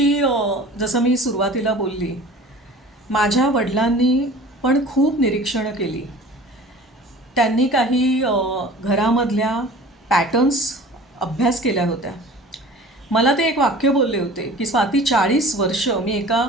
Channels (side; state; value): both; normal; correlation 0.43